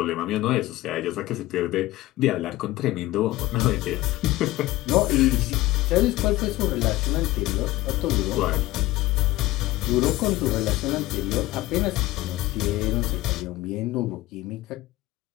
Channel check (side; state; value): right; quieter; 17.5 dB